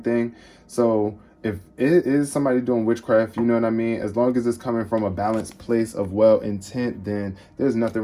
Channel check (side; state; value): both; identical; correlation 1.00